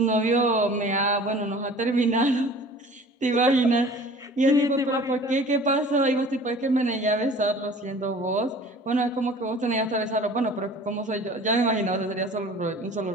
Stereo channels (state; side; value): normal; both; correlation 0.45